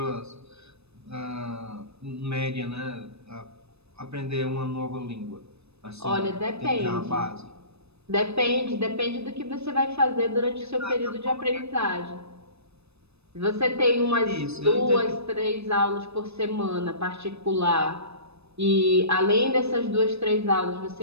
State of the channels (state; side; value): late; left; 0.79 ms